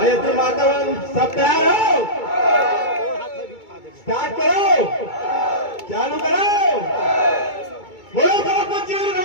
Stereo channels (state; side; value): late; right; 2.3 ms